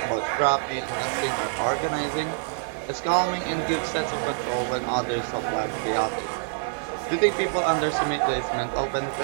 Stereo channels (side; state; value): left; silent; digital silence